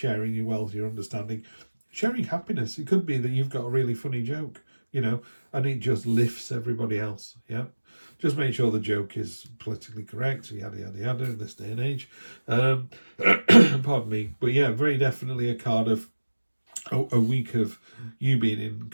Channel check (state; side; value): inverted; both; correlation -1.00